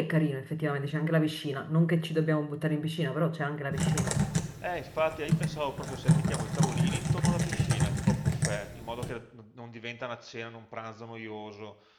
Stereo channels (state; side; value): identical; both; correlation 1.00